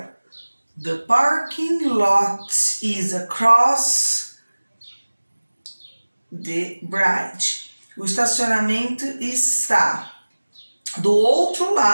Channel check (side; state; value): both; inverted; correlation -1.00